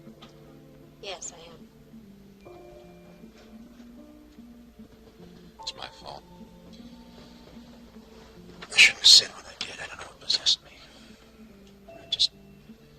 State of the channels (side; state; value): both; identical; correlation 1.00